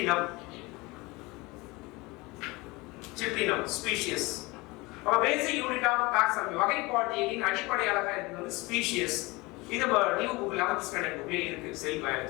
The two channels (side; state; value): right; quieter; 23.5 dB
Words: Cyprinum species our basic unit of taxonomy வகைப்பாட்டியலின் அடிப்படை அலகா இது வந்து species இது நியூ புக் 11th ஸ்டாண்டர்ட் புக்ல இருக்கு செல்